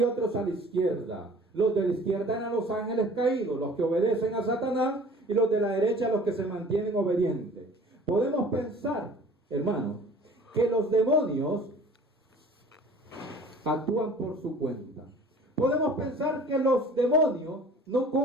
otros a la izquierda. Los de la izquierda eran los ángeles caídos, los que obedecen a Satanás, y los de la derecha los que se mantienen obedientes. Podemos pensar, hermano, que los demonios actúan por su cuenta. Podemos pensar que los demonios no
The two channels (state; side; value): normal; both; correlation 0.48